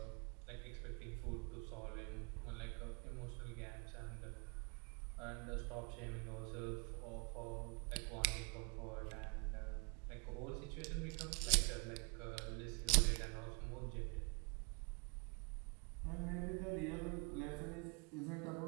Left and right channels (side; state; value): left; quieter; 35.4 dB